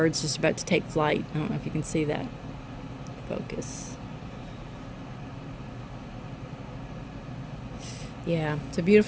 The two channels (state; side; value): identical; both; correlation 1.00